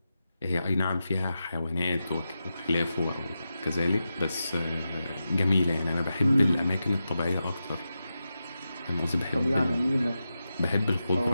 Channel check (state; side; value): inverted; both; correlation -0.91